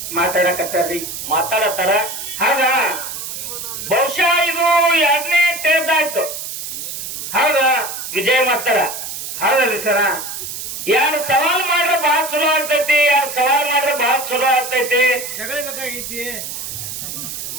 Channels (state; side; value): noise; right; hiss, 7 dB below the sound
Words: ಮಾತಾಡತ್ತಾರ. ಹೌದಾ? ಬಹುಶಃ ಇದು 2ನೇ ಟೇಜ್ ಆಯ್ತು. ಹೌದಾ ವಿಜಯ ಮಾಸ್ತರ? ಹೌದಲ್ರಿ ಸರ. ಎರಡು ಸವಾಲ್ ಮಾಡ್ರೆ ಬಹಳ ಚಲೋ ಆಗ್ತೈತಿ, ಎರಡು ಸವಾಲ್ ಮಾಡ್ರೆ ಬಹಳ ಚಲೋ ಆಗ್ತೈತಿ.